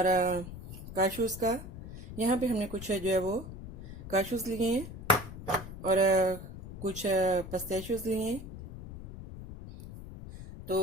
काशूज़ का। यहाँ पे हमने कुछ जो है वो काशूज़ लिए हैं और कुछ पिस्ताशियोज़ लिए हैं। तो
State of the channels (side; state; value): left; noise; rumble, 12 dB below the sound